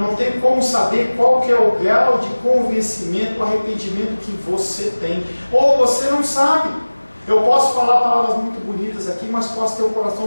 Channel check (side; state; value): both; inverted; correlation -1.00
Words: como saber qual que é o grau de convencimento, arrependimento que você tem. Ou você não sabe. Eu posso falar palavras muito bonitas aqui, mas posso ter o